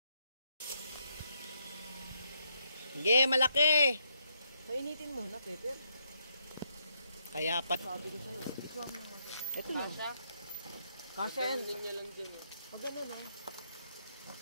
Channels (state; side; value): inverted; both; correlation -0.77